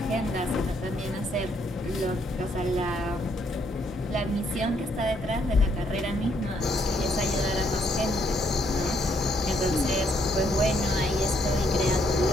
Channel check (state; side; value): normal; both; correlation 0.71